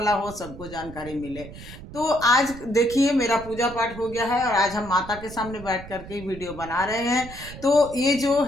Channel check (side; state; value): right; noise; rumble, 14 dB below the sound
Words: हो, सबको जानकारी मिले। तो आज देखिए, मेरा पूजा पाठ हो गया है और आज हम माता के सामने बैठ करके वीडियो बना रहे हैं। तो ये जो